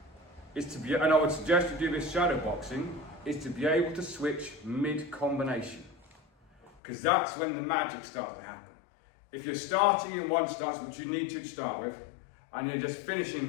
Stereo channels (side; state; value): right; drops out; at 6.8 s